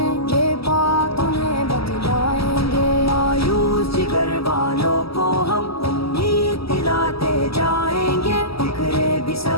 ये बात उन्हें बतलाएंगे। मायूस जिगर वालों को हम उम्मीद दिलाते जाएंगे। बिखरे भी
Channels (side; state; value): right; late; 0.76 ms